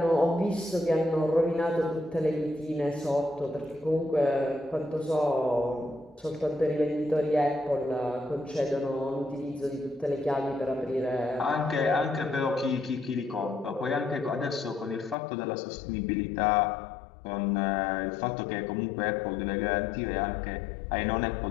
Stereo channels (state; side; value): drops out; right; at 15.2 s